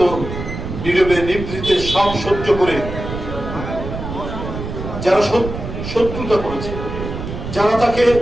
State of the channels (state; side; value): noise; right; rumble, 7 dB below the sound